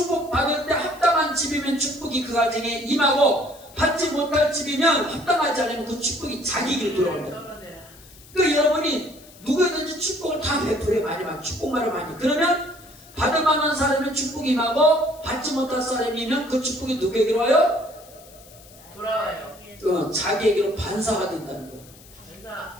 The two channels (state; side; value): noise; left; hiss, 23 dB below the sound